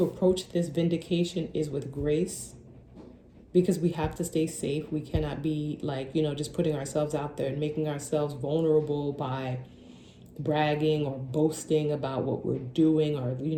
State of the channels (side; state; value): both; identical; correlation 1.00